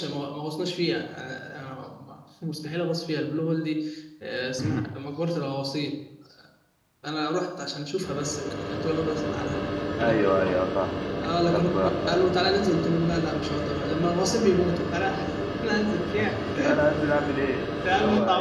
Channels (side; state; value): both; identical; correlation 1.00